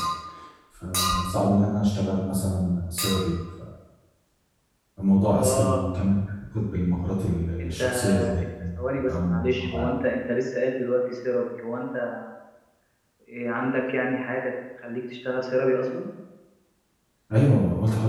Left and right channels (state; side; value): identical; both; correlation 1.00